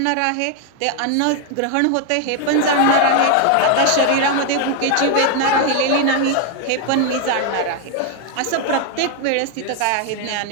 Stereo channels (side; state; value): both; different; correlation 0.01